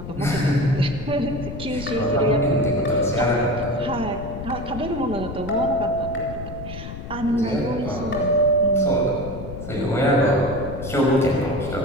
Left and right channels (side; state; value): left; noise; rumble, 9 dB below the sound